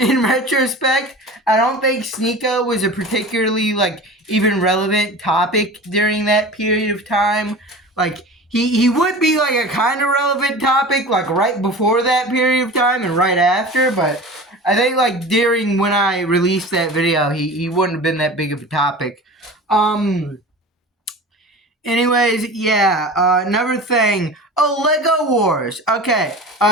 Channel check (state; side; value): normal; both; correlation 0.35